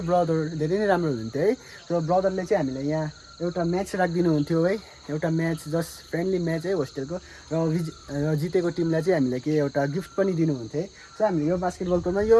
ब्रदर धेरै नै राम्रो हुन्थ्यो है। र ब्रदरले चाहिँ हामीलाई यहाँ एउटा म्याच राखिदिनु हुन्थ्यो है, एउटा म्याच, जस्ट फ्रेन्डली म्याच है होस्टेलको। र जितेको टिमलाई चाहिँ हामीलाई के एउटा गिफ्ट पनि दिनुहुन्थ्यो है। सो हामीले यो बास्केटबल कोर्टमा, यो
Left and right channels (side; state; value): both; identical; correlation 1.00